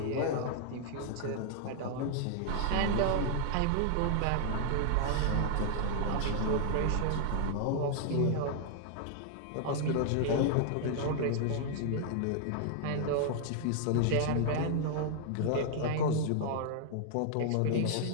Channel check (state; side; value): different; both; correlation 0.00